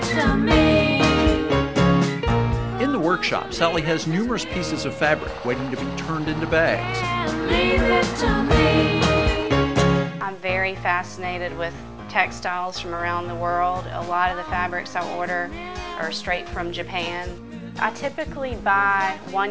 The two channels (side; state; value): both; identical; correlation 1.00